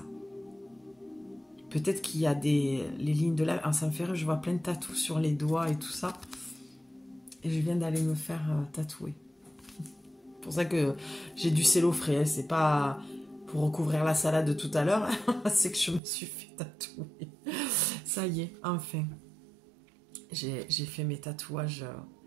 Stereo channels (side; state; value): left; drops out; at 16.0 s